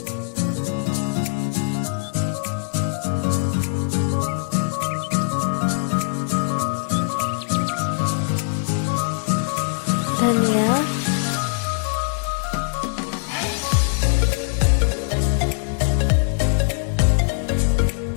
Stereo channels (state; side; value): silent; right; 64 dB below the other